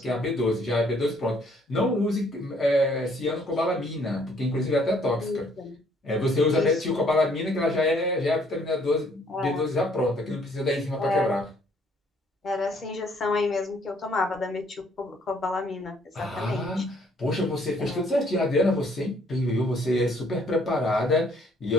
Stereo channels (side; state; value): both; normal; correlation 0.64